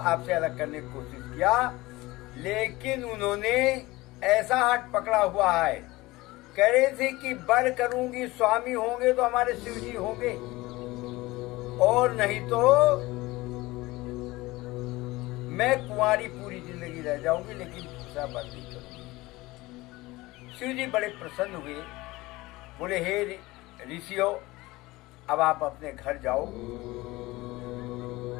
अलग करने की कोशिश किया, लेकिन उन्होंने ऐसा हाथ पकड़ा हुआ है, कह रहे थे कि वर करूंगी, स्वामी होंगे तो हमारे शिव जी होंगे, और नहीं तो मैं कुंवारी पूरी जिंदगी रह जाऊंगी, लेकिन दूसरा वर नहीं करूंगी। शिव जी बड़े प्रसन्न हुए, बोले हे ऋषियों, अब आप अपने घर जाओ।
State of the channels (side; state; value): right; quieter; 20.2 dB